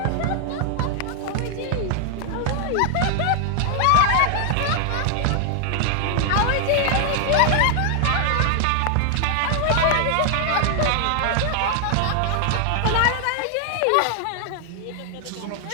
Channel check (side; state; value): both; different; correlation 0.00